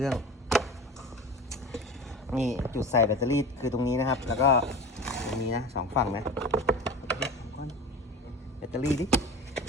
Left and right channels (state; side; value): normal; both; correlation 0.33